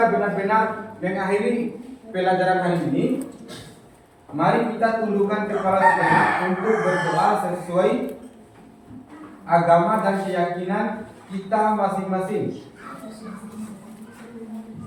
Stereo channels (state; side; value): identical; both; correlation 1.00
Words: benar-benar mengakhiri pelajaran hari ini, mari kita tundukkan kepala sejenak untuk berdoa sesuai agama dan keyakinan kita masing-masing.